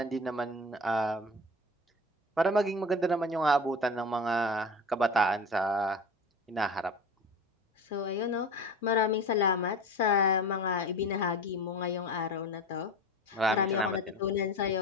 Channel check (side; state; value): both; normal; correlation 0.33